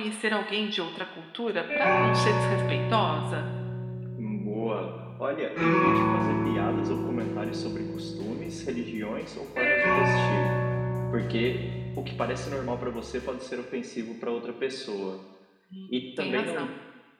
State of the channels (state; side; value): identical; both; correlation 1.00